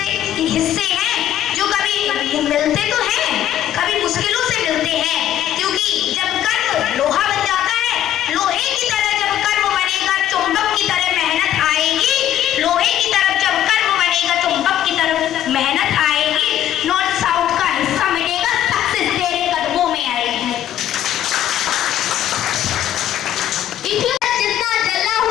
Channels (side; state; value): right; quieter; 11.6 dB